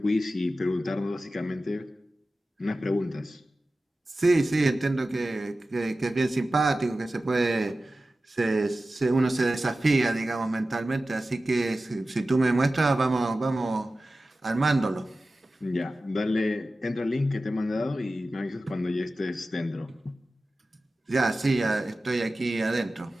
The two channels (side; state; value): both; normal; correlation 0.95